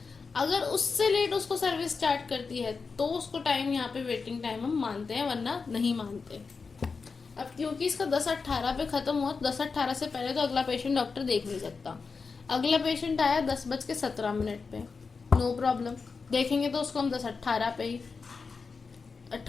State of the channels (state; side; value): quieter; right; 4.8 dB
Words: अगर उससे लेट उसको सर्विस स्टार्ट करती है तो उसको टाइम यहाँ पे वेटिंग टाइम हम मानते हैं, वरना नहीं मानते। अब क्योंकि इसका 10:18 पे खत्म हुआ, 10:18 से पहले तो अगला पेशेंट डॉक्टर देख नहीं सकता। अगला पेशेंट आया 10:17 पे, नो प्रॉब्लम, देखेंगे तो उसको हम 10:18 पे ही,